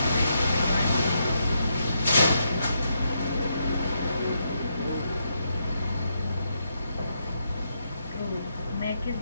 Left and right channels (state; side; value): inverted; both; correlation -0.80